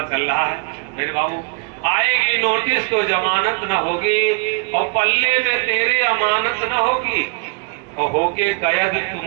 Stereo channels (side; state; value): left; quieter; 32.5 dB